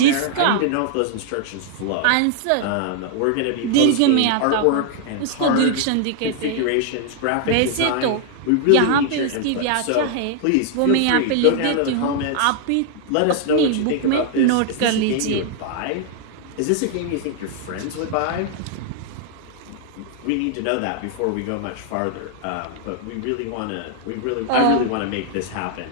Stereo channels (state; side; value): different; both; correlation 0.00